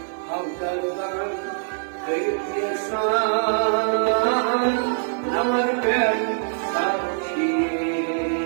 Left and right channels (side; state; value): left; silent; digital silence